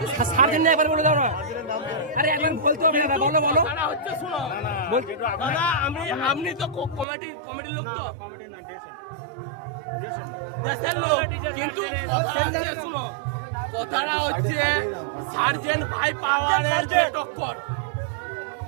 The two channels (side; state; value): left; drops out; at 7.1 s